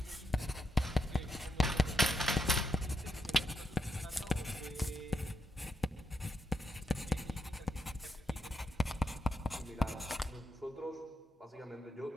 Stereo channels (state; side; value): normal; both; correlation 0.83